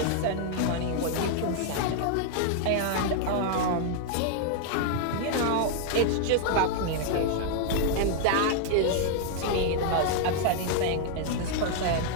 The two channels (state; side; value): different; both; correlation 0.00